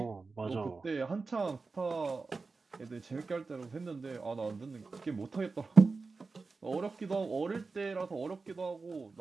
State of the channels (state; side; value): quieter; left; 4.1 dB